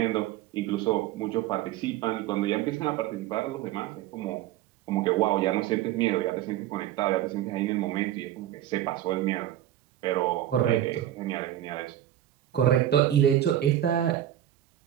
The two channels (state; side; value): quieter; left; 12.4 dB